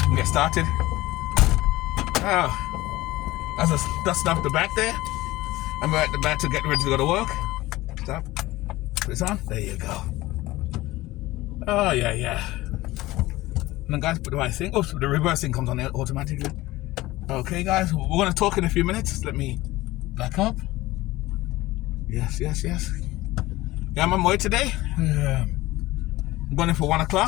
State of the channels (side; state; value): right; quieter; 18.3 dB